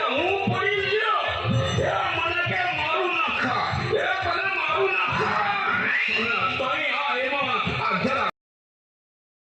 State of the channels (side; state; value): both; identical; correlation 1.00